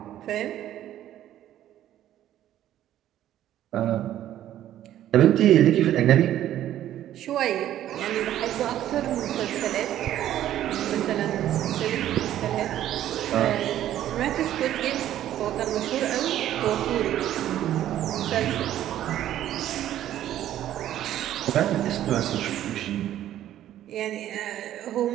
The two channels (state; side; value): quieter; left; 12.2 dB